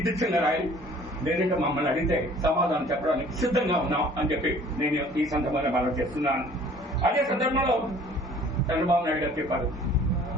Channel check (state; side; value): normal; both; correlation 0.52